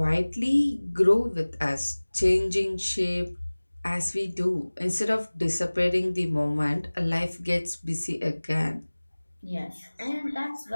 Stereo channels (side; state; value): both; inverted; correlation -1.00